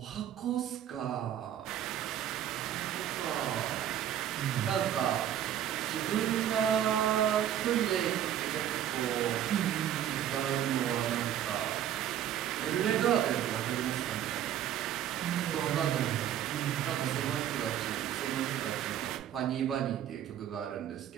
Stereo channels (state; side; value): quieter; left; 10.7 dB